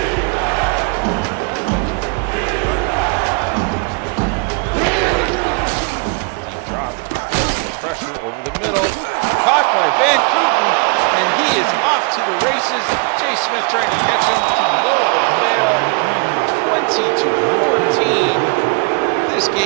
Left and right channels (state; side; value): quieter; left; 34.3 dB